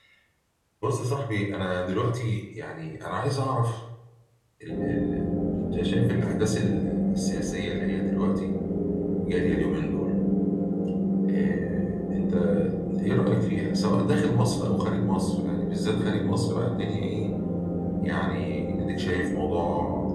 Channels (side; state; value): both; identical; correlation 1.00